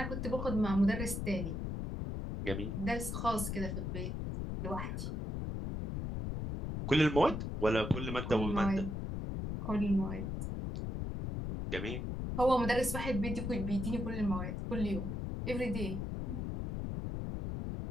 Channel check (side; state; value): left; noise; rumble, 3 dB below the sound